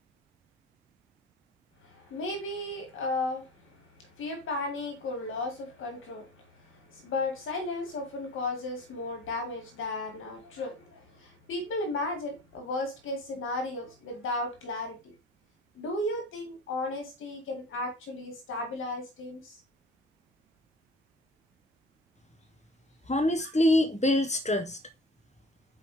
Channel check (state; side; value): normal; both; correlation 0.40